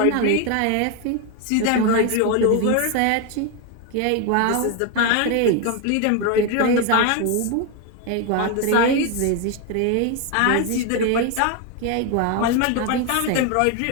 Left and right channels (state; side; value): different; both; correlation 0.01